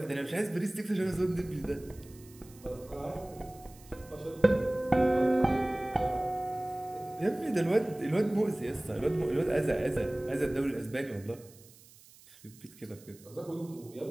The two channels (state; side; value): noise; right; hiss, 23 dB below the sound